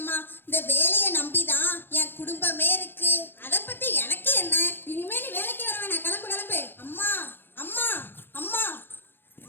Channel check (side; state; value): right; late; 0.10 ms